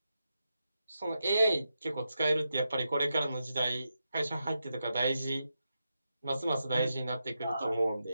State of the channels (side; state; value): both; inverted; correlation -0.87